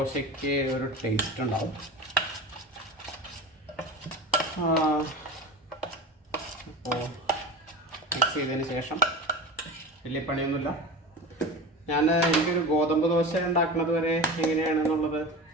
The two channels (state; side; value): normal; both; correlation 0.30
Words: ഒരു ടേസ്റ്റ് ഉണ്ടാവും. അപ്പോൾ മിക്സ് ചെയ്തതിന് ശേഷം വലിയ പണിയൊന്നുമില്ല. എനിക്കൊരു ഗോതമ്പ് ദോശ ഉണ്ടാക്കുന്നത് വരെ എങ്ങനെയാണെന്നുള്ളത്